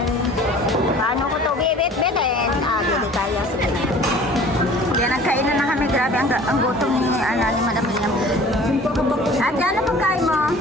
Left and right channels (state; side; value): normal; both; correlation 0.47